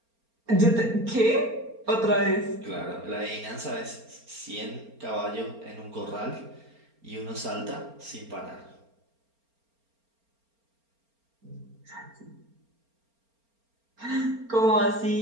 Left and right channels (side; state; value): left; late; 4.3 ms